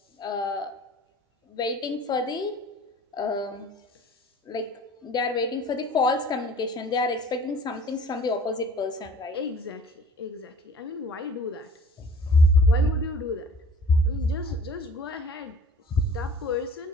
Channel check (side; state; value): both; normal; correlation 0.48